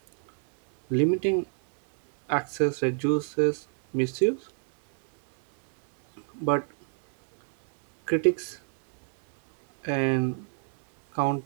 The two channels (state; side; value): silent; left; 57 dB below the other